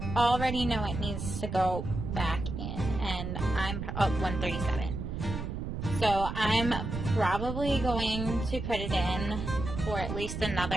already know it needs to go back in, and I'm 137. So I'm probably going to put it in for at least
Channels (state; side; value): noise; right; rumble, 5 dB below the sound